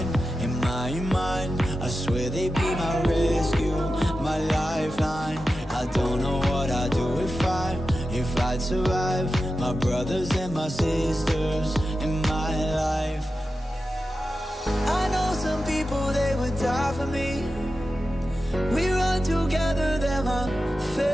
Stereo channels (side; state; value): both; normal; correlation 0.91